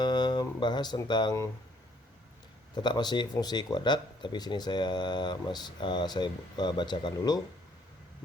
tentang tetap masih fungsi kuadrat, tapi sini saya bacakan dulu.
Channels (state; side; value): normal; both; correlation 0.64